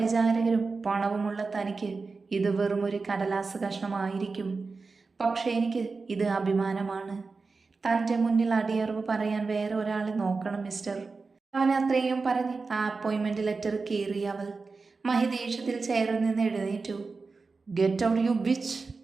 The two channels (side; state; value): left; quieter; 4.2 dB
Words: പണവുമുള്ള തനിക്ക് ഇത് വെറും ഒരു കടലാസ് കഷ്ണമായിരിക്കും. പക്ഷേ എനിക്ക് ഇത് അഭിമാനമാണ്. തൻ്റെ മുന്നിൽ അടിയറവ് പറയാൻ വേറെ ഒരാളെ നോക്കണം മിസ്റ്റർ. അവൻ അത്രയും പറഞ്ഞ് ആ അപ്പോയിൻമെൻറ്റ് ലെറ്റർ കീറി അവൾ. മഹി ദേഷ്യത്തിൽ ചെയറിൽ നിന്ന് എഴുന്നേറ്റു. Get out you bitch!